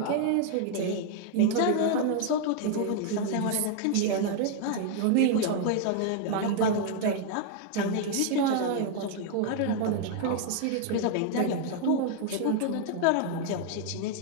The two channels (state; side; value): different; both; correlation 0.00